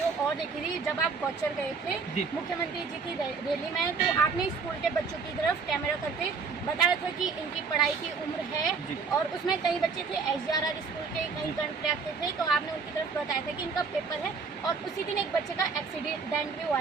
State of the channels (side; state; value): left; quieter; 4.9 dB